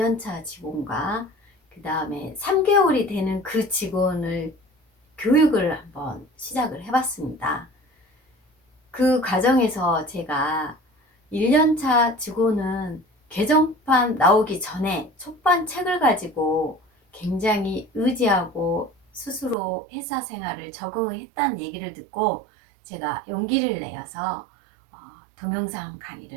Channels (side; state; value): left; drops out; at 19.6 s